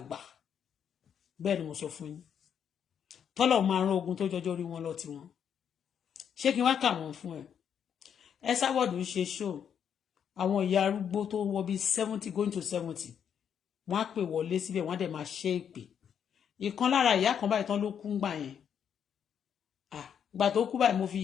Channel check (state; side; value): quieter; right; 8.2 dB